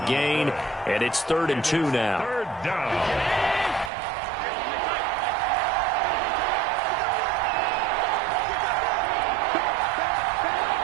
and it's 3rd and 2 now. Third down.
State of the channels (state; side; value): drops out; left; at 3.9 s